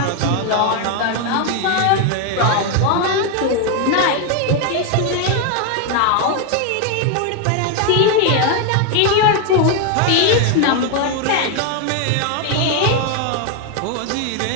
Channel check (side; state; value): both; different; correlation 0.01